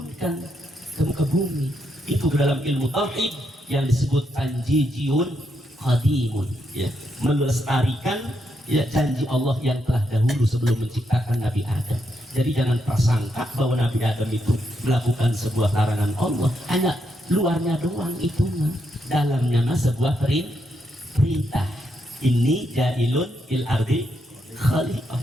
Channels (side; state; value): both; normal; correlation 0.80